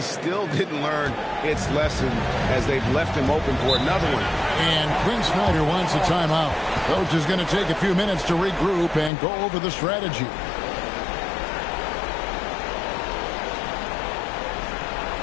still didn't learn its lesson as they've left him open for another one. And Quinn Snyder wants a timeout. Coach is going to take a few minutes to regroup and go over the strategy.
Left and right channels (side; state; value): right; drops out; at 9.1 s